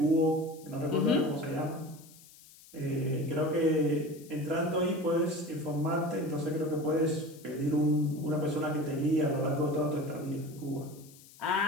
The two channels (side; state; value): left; noise; hiss, 22 dB below the sound